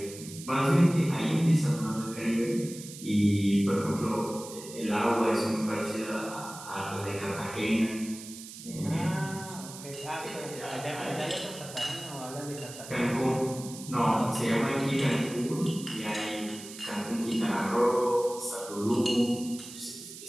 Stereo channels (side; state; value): right; noise; hiss, 14 dB below the sound